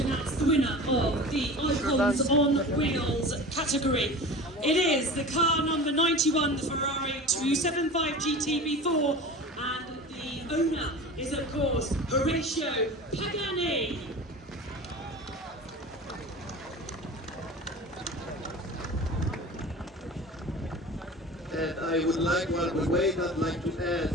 announce the winner of the Icons on Wheels category. It is the car number 91, the Ferrari 275 GT V4, and the owner is of course Horatio Pagani. And I would like, while we wait, I'd like to add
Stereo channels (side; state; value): both; normal; correlation 0.35